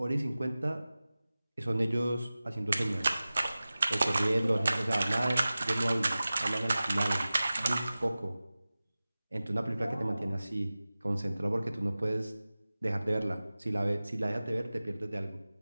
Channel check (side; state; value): both; inverted; correlation -0.97